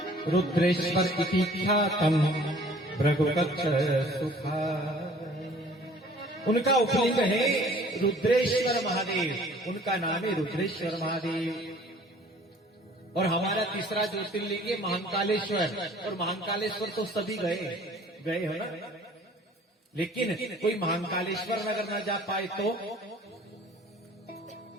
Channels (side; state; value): both; normal; correlation 0.52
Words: रुद्रेश्वर इति ख्यातम भृगुकच्छ सुखा। उनका उपलिंग है रुद्रेश्वर महादेव, उनका नाम है रुद्रेश्वर महादेव। और हमारा तीसरा ज्योतिर्लिंग है महाकालेश्वर, और महाकालेश्वर तो सभी गए हो ना, लेकिन कोई महाकालेश्वर अगर ना जा पाए तो